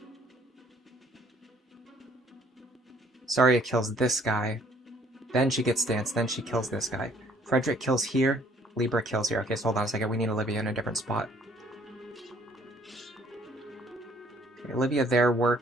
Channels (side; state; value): both; normal; correlation 0.61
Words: Saria kills this guy. Then she gets danced. Then she kills this guy. Frederick kills here. Libra kills here. Okay, so hold on a second. We need Olivia in a different spot. Okay, Olivia there